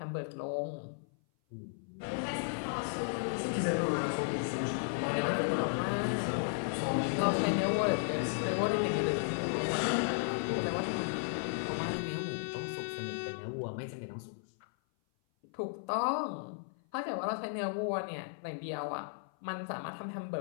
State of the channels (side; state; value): right; silent; 55 dB below the other